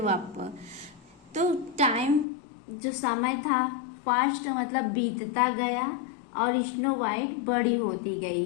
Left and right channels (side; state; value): right; drops out; at 2.2 s